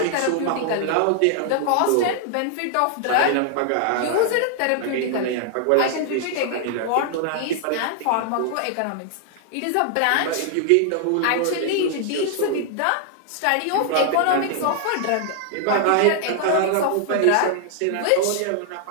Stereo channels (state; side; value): different; both; correlation 0.00